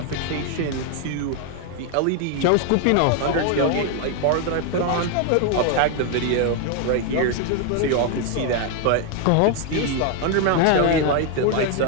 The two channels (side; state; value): both; different; correlation 0.01